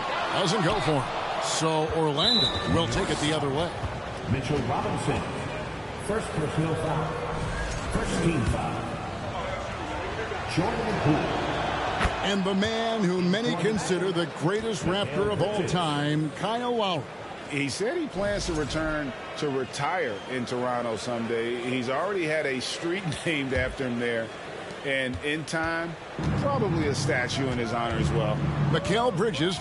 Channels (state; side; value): identical; both; correlation 1.00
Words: Doesn't go for him. So Orlando will take it the other way. Mitchell Robinson. First personal foul. First team foul. Jordan Poole. And the man who many consider the greatest Raptor of all time, Kyle Lowry. He said he plans to return to retire in Toronto someday. He's already had a street named after him there. And in time, probably a statue in his honor as well. Mikal Bridges